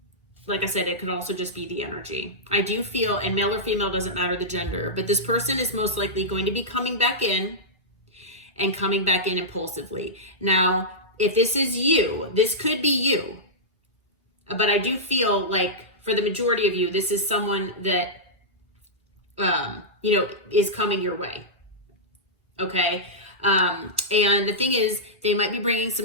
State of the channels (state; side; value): normal; both; correlation -0.11